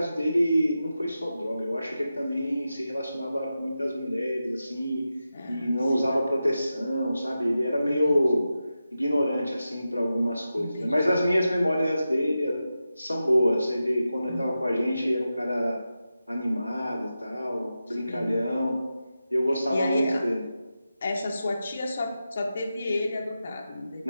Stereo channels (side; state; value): both; inverted; correlation -0.91